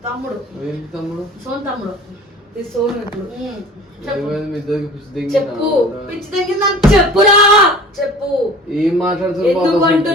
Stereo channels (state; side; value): normal; both; correlation 0.43